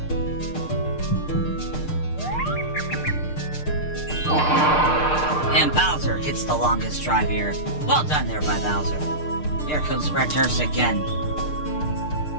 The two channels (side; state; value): right; late; 6.6 ms